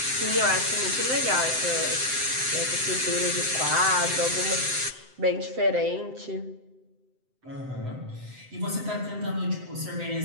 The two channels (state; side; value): late; left; 7.8 ms